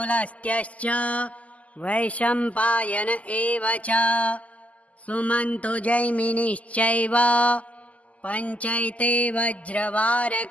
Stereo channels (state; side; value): late; right; 0.070 ms